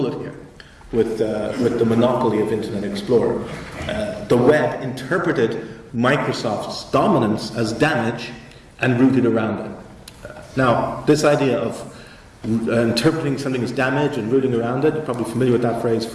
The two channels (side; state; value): both; identical; correlation 1.00